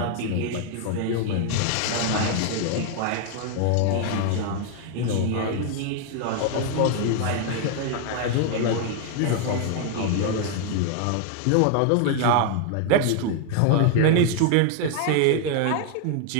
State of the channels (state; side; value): different; both; correlation 0.00